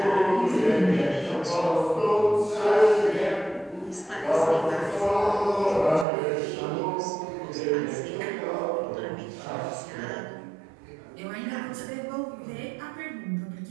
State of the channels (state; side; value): drops out; left; at 6.1 s